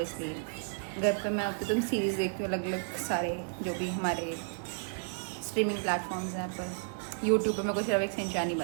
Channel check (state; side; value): silent; left; 56 dB below the other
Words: घर पे मैं अब तो सीरीज़ देखती हूँ अलग अलग सारे, जो भी हमारे स्ट्रीमिंग प्लेटफॉर्म्स हैं पर। यूट्यूब पे मेरे को सिर्फ एक सिंचान नहीं